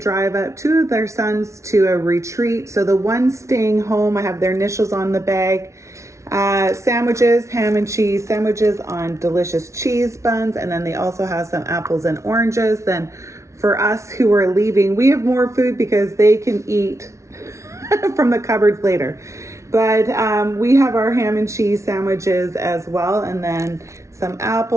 up 2 of their sons to a retreat. So the one staying home, I have their initials on the bag. Sandwiches, ham and cheese sandwiches on delicious cheese buns. And then they also have some apples and oranges. Then for us who are leaving, we have more food because they can eat from the cupboards later. But we have our ham and cheese sandwiches as well, and then some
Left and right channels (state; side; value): late; left; 0.14 ms